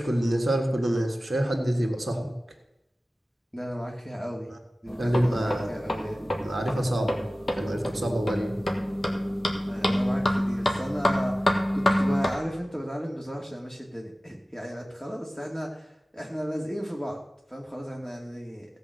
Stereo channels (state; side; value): normal; both; correlation 0.96